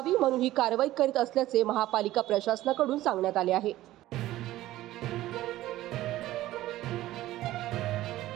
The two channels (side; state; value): left; quieter; 15.4 dB